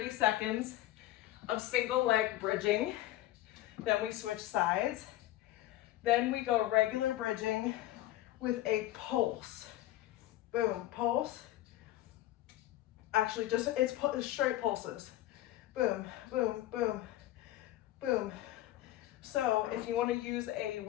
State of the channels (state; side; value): quieter; right; 14.8 dB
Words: seconds of single leg bridging. Then we switch sides. Then we go regular bridging with a pulse. Boom, pulse. Actually, it's straight pulses. Boom, boom, boom, boom. So if you want to use a